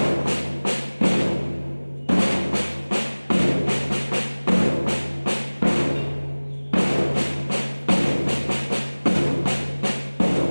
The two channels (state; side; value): inverted; both; correlation -1.00